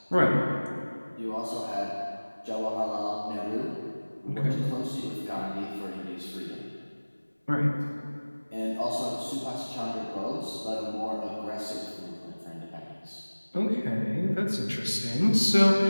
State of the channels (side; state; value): both; inverted; correlation -1.00